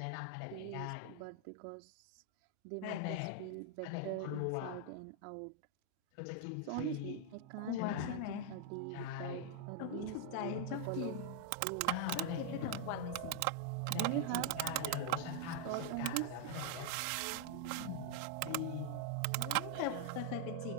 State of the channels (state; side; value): different; both; correlation -0.01